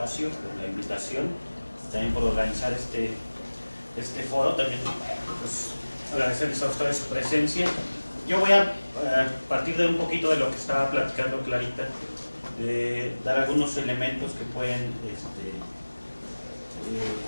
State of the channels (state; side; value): inverted; both; correlation -1.00